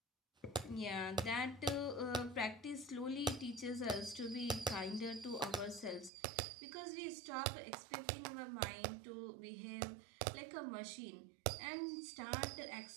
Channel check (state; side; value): drops out; left; at 6.1 s